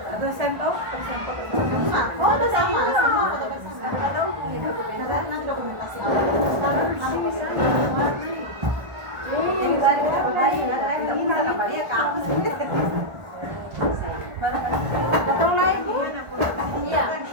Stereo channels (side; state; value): left; late; 1.5 ms